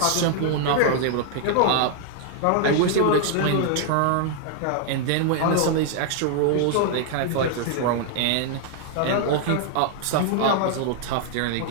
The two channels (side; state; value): both; different; correlation 0.00